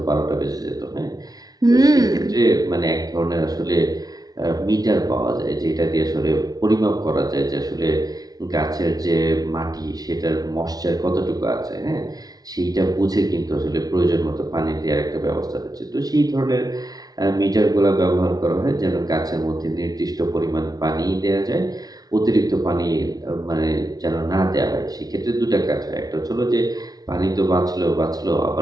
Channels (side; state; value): left; late; 0.19 ms